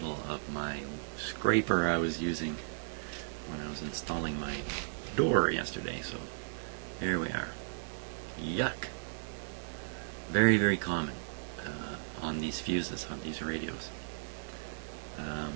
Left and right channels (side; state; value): left; silent; digital silence